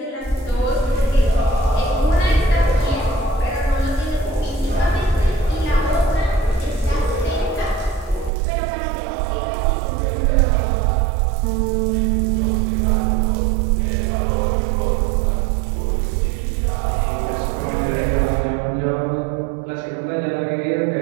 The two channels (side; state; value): left; drops out; at 8.3 s